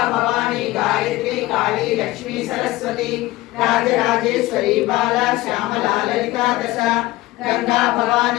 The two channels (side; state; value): right; quieter; 18.4 dB